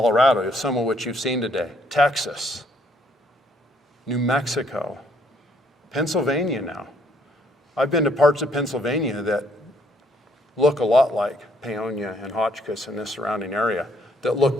some of which you've seen today. Texas, New Mexico, Pennsylvania now. I've been to parts of Pennsylvania that look a lot like Pavillion and Hotchkiss and this surrounding area, that look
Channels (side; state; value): both; normal; correlation 0.67